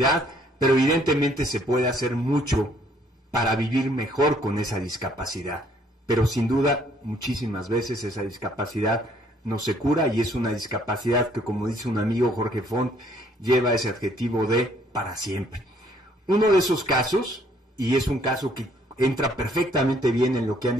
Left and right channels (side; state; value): both; normal; correlation 0.64